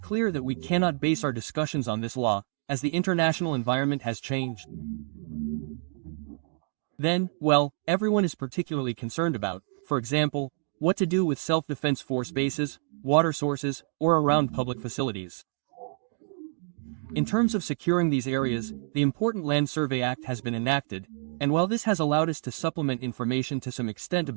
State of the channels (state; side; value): silent; left; digital silence